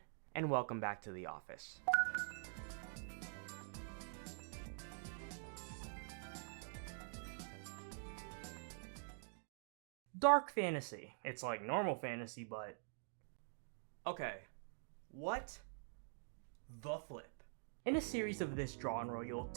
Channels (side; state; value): left; silent; digital silence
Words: and welcome back to the office. Dark fantasy. It's like normal fantasy, but... Okay, what the flip? In a series of this genre, you'll